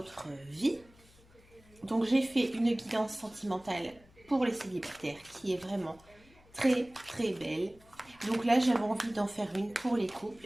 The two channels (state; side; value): noise; left; hum, 27 dB below the sound